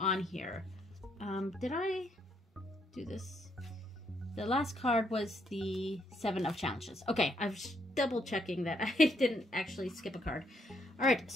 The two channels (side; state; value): both; normal; correlation 0.74